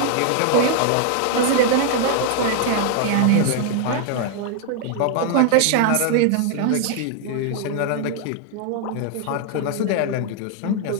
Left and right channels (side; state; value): both; different; correlation 0.00